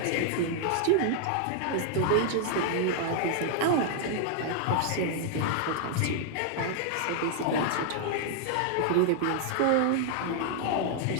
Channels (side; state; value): both; different; correlation 0.00